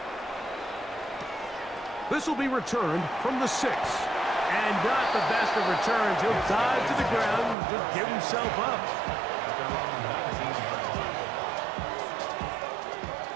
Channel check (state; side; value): drops out; left; at 7.6 s